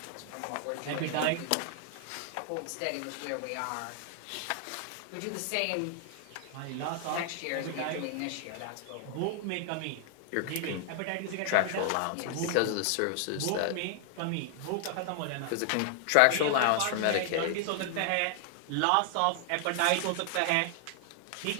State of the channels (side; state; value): both; different; correlation 0.00